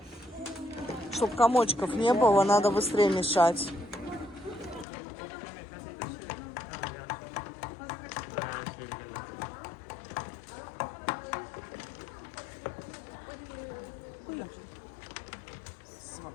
Чтоб комочков не было, надо быстрее мешать.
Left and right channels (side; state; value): right; drops out; at 4.9 s